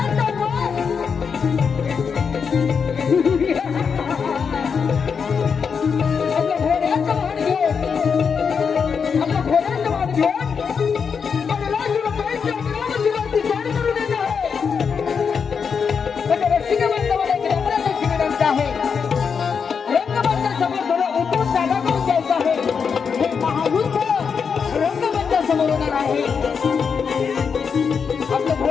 तर आपल्या घोड्याचं वाहन घेऊन आणि राजूबाईंच्या अमरावतीवरती स्वारी करून येत आहे. म्हणजे रसिक बांधवाला एक रंगराजाची विनंती आहे. रंगबांधा समोर थोडं उतरून जागा करून द्यायचं आहे. हे महायुद्ध आहे आपलं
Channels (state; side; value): quieter; right; 6.2 dB